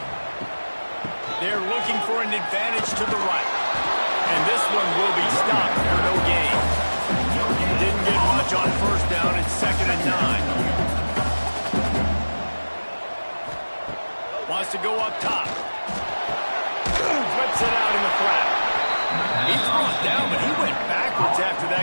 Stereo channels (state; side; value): inverted; both; correlation -1.00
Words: They're looking for an advantage to the right. And this one will be stopped for no gain. Didn't get much on first down. It's 2nd and 9. Wants to go up top. Flips it out in the flat. He's brought down, but he went backwards after